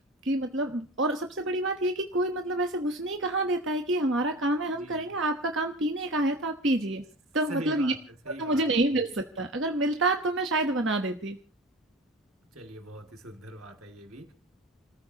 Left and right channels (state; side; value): normal; both; correlation 0.34